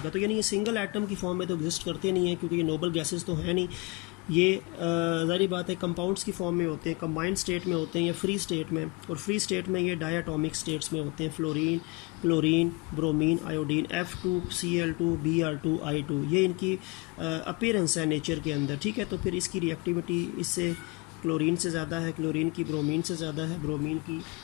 तो यानी ये सिंगल एटम की फॉर्म में तो एग्जिस्ट करते नहीं हैं, क्योंकि ये नोबल गैसेस तो हैं नहीं, ये ज़ाहिर बात है कंपाउंड्स की फॉर्म में होते हैं, कंबाइंड स्टेट में होते हैं या फ्री स्टेट में। और फ्री स्टेट में ये डायटोमिक स्टेट्स में होते हैं, fluorine, chlorine, bromine, iodine, F2, Cl2, Br2, I2, ये इनकी अपीयरेंस है नेचर के अंदर, ठीक है। तो फिर इसकी रिएक्टिविटी इससे क्लोरीन से ज़्यादा है, क्लोरीन की ब्रोमीन से ज़्यादा है, ब्रोमीन की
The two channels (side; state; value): right; quieter; 26.5 dB